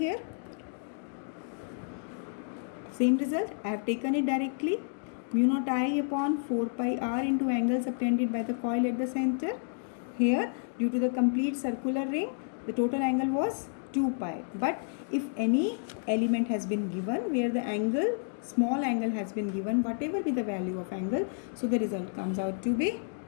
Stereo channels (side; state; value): right; silent; digital silence